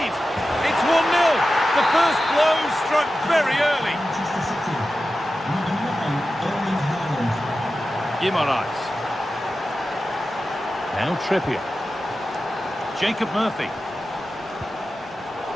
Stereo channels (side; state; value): both; normal; correlation 0.93